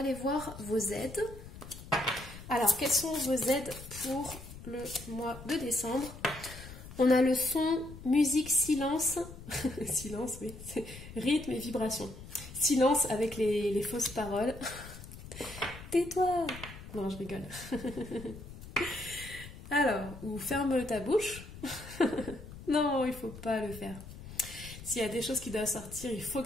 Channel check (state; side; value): noise; left; rumble, 14 dB below the sound